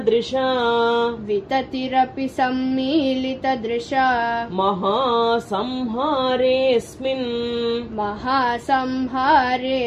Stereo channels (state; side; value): identical; both; correlation 1.00